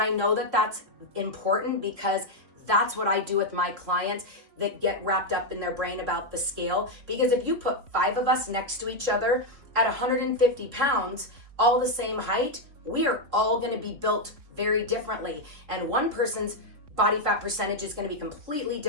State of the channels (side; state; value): left; late; 3.4 ms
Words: know that that's important, because that's what I do with my clients that get wrapped up in their brain about the scale. Because if you put 5 of us next to each other at 150 pounds, all the same height, we are all gonna be built very differently. And one person's body fat percentage is gonna be completely